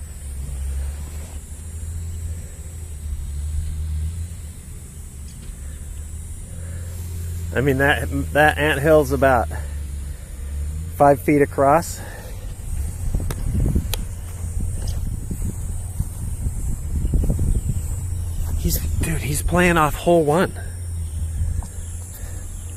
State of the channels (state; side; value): identical; both; correlation 1.00